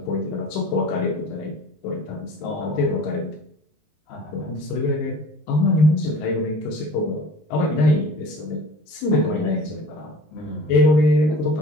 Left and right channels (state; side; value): late; right; 19 ms